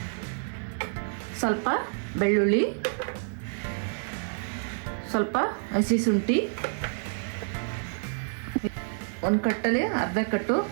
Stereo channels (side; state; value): left; silent; digital silence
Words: ಸ್ವಲ್ಪ ಬೆಳ್ಳುಳ್ಳಿ, ಸ್ವಲ್ಪ ಹಸಿ ಶುಂಠಿ, 1 ಕಟ್ಟಲ್ಲಿ ಅರ್ಧ ಕಟ್ಟು